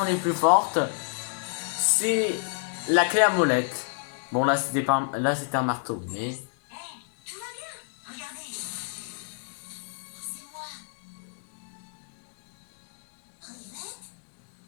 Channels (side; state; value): right; silent; digital silence